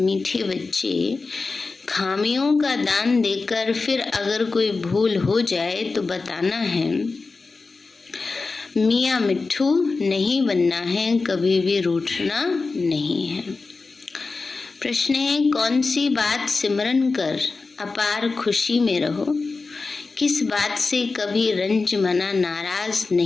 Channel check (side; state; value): right; quieter; 4.0 dB